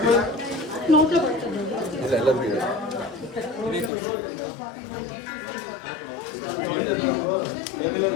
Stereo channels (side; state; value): right; drops out; at 3.9 s